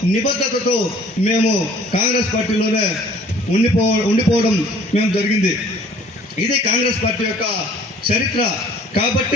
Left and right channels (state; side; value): normal; both; correlation 0.53